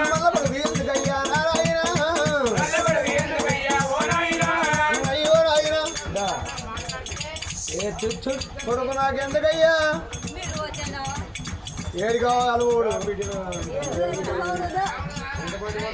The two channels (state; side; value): identical; both; correlation 1.00